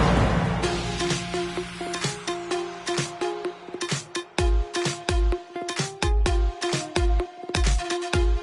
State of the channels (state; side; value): identical; both; correlation 1.00